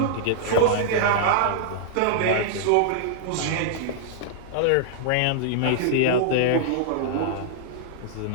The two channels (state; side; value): different; both; correlation -0.01